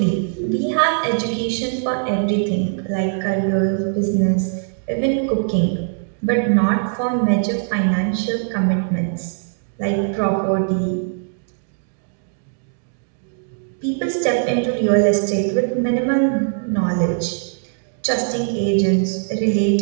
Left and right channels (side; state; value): left; silent; digital silence